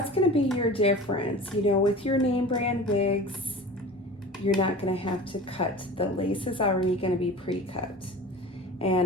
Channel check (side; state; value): both; normal; correlation 0.37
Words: gonna be your difference. You know, with your name brand wigs, you're not gonna have to cut. The lace is already gonna be pre-cut.